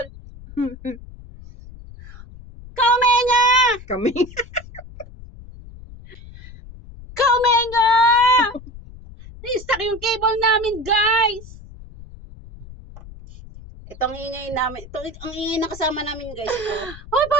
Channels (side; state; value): left; noise; rumble, 17 dB below the sound